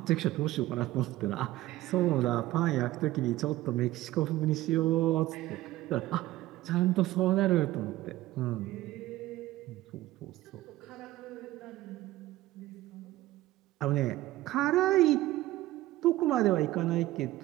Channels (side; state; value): left; quieter; 16.4 dB